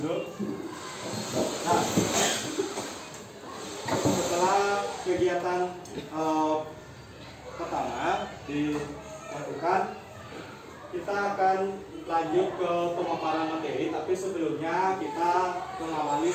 Nah, setelah kegiatan pertama dilakukan, kita akan lanjut ke pemaparan materi. Tapi sebelumnya kita mengawali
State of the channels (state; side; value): identical; both; correlation 1.00